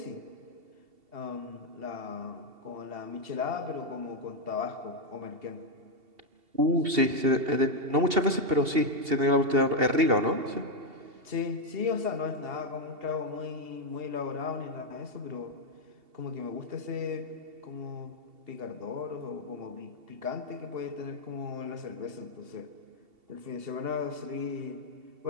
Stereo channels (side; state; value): left; late; 2.7 ms